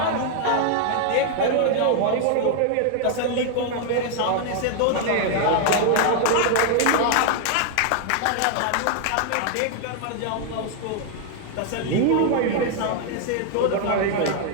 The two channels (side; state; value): both; different; correlation 0.00